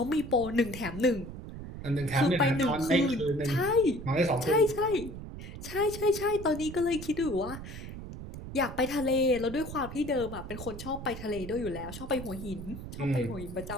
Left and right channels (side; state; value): right; noise; rumble, 10 dB below the sound